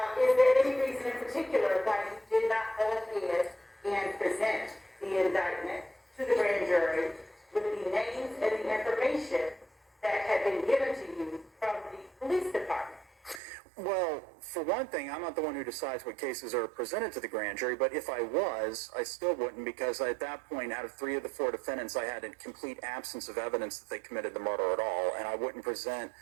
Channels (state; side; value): drops out; left; at 13.4 s